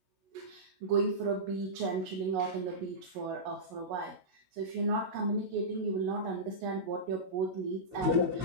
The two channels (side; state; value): left; late; 16 ms